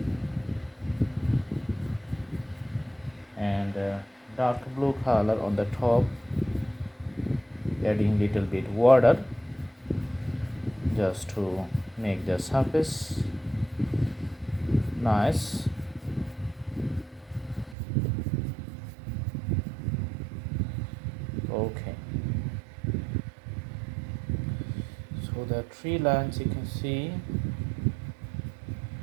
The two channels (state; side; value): drops out; left; at 17.8 s